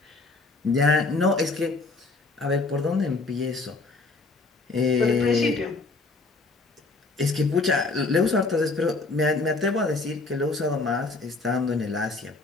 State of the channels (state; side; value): quieter; right; 3.6 dB